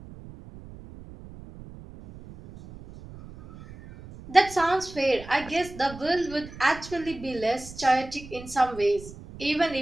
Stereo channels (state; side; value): noise; right; rumble, 16 dB below the sound